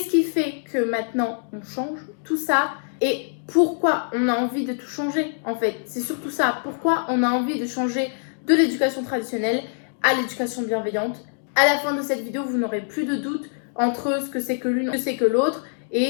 qui fait que maintenant on change tout ça et pourquoi on a envie de tout changer en fait. C'est surtout ça, pourquoi on a envie de changer de l'éducation traditionnelle à l'éducation bienveillante. À la fin de cette vidéo, vous n'aurez plus de doute entre ce que c'est que l'une, ce que c'est que l'autre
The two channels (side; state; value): right; silent; digital silence